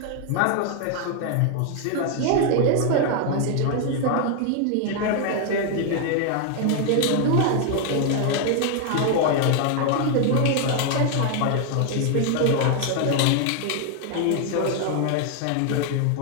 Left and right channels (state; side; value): different; both; correlation 0.00